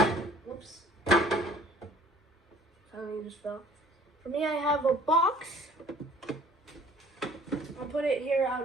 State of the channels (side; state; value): both; normal; correlation 0.53